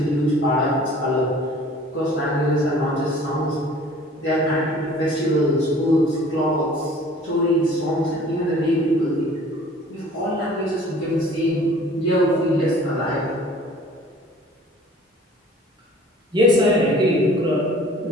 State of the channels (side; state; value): both; normal; correlation 0.50